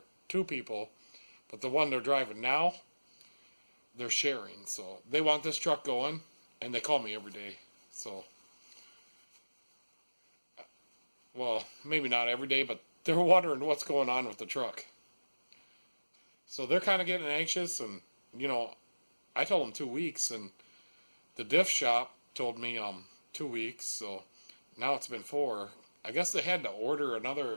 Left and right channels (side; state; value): both; inverted; correlation -1.00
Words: 2 people, but the one they're driving now, they're sharing. So they want this truck going, and they call me every day. So, well, maybe not every day, but they're wondering what's going on with the truck. So they're kind of getting anxious, and you know, I told them 2 weeks, and the Diff shop told me 2 weeks, so now it's been 4. I guess they had to order